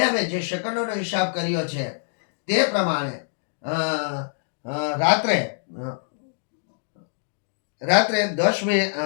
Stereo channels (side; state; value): right; silent; digital silence